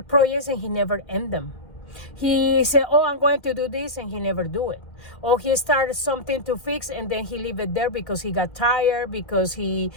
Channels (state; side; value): late; right; 1.9 ms